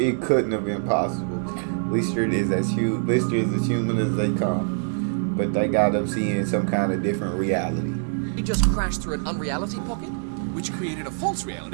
couldn't have been possible. Lister is as human as they come, but they got them seeing some kind of different reality. he just crashed through an unreality pocket? Which created a false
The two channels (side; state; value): left; silent; 62 dB below the other